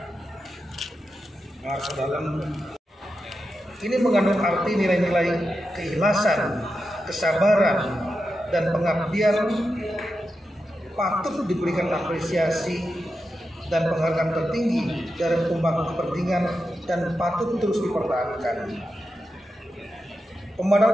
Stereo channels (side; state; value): both; normal; correlation 0.89